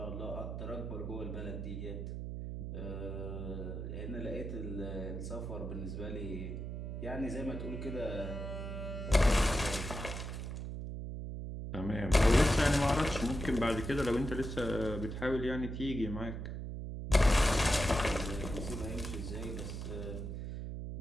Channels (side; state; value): right; noise; hum, 5 dB below the sound